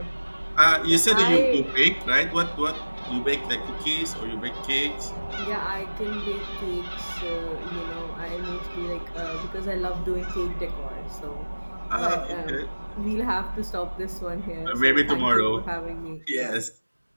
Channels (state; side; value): inverted; both; correlation -1.00